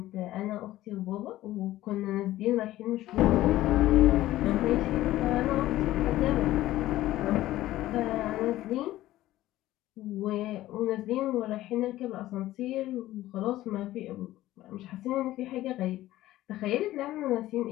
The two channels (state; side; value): quieter; right; 15.4 dB